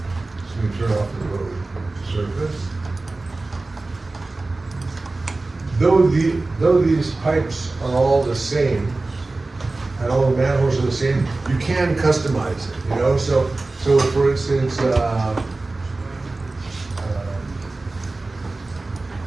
me turn off the road surface. Though these pipes are all the same, and all the manholes are the same, you can customize it, you know? So for instance,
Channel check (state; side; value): quieter; left; 3.3 dB